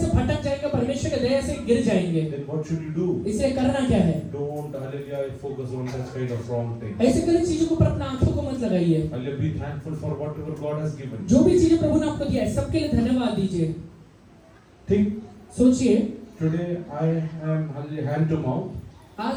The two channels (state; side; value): identical; both; correlation 1.00